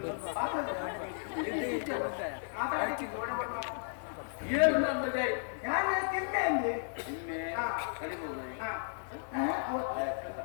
ಏನು ನಂದದೆ ಯಾರು ತಿನ್ನೆ ಅಂದ್ರೆ ನಿನ್ನೆ ಕಡಿಮೆ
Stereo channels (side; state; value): right; silent; digital silence